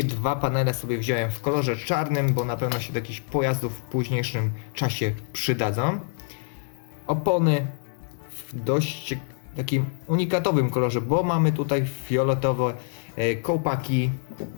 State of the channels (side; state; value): right; silent; digital silence